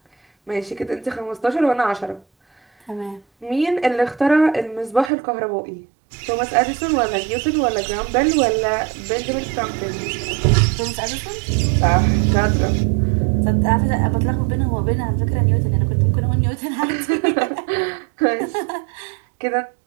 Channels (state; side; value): drops out; left; at 5.1 s